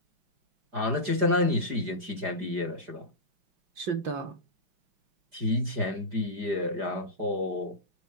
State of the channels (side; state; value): left; late; 4.9 ms